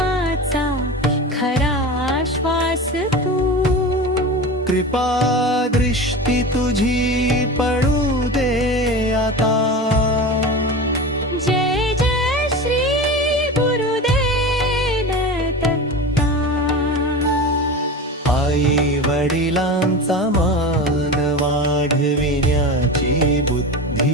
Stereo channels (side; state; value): both; normal; correlation 0.28